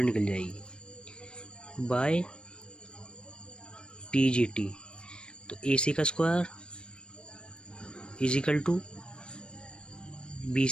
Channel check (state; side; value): late; right; 0.055 ms